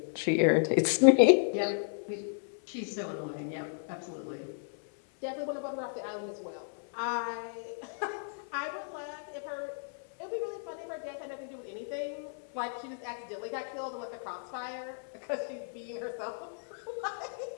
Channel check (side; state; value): right; silent; 55 dB below the other